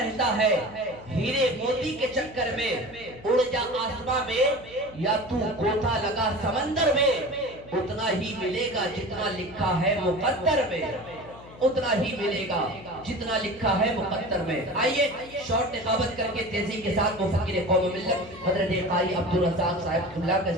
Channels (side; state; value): left; noise; hum, 20 dB below the sound